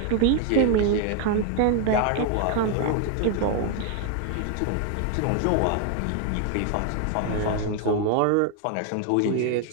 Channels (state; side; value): different; both; correlation 0.00